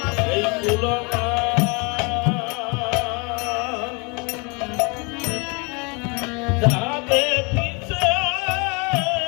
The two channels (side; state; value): right; quieter; 30.9 dB